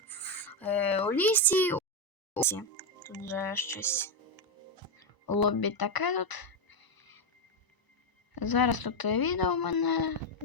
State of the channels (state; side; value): late; right; 1.0 ms